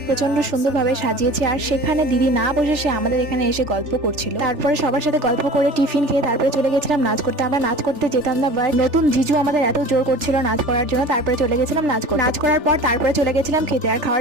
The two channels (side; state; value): left; late; 3.4 ms